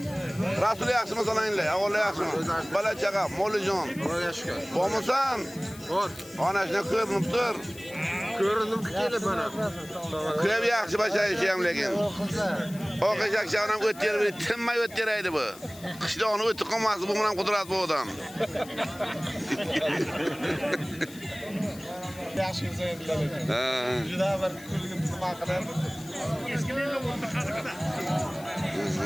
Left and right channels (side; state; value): left; noise; hiss, 19 dB below the sound